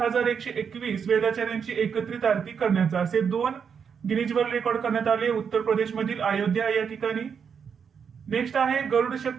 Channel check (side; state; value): left; quieter; 6.8 dB